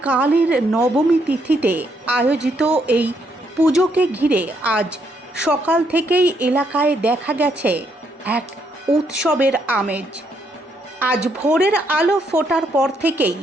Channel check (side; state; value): both; normal; correlation 0.74